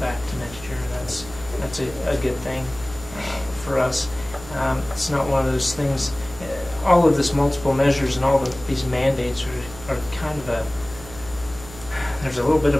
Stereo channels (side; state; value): right; noise; hum, 16 dB below the sound